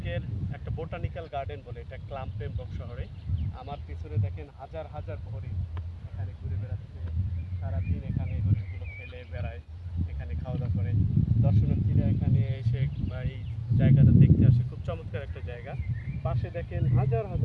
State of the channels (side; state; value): both; identical; correlation 1.00